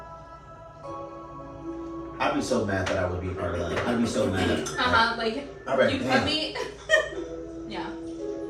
I'd be so mad that I would be a part of that. I'd be so mad. Like, you put me. Yeah.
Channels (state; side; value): identical; both; correlation 1.00